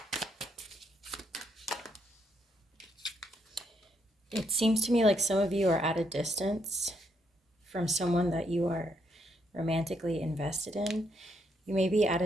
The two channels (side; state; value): both; normal; correlation 0.76